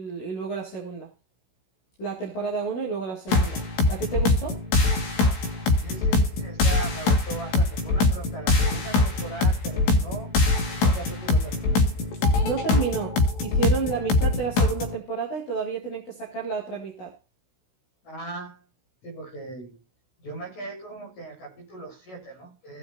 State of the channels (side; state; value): right; late; 16 ms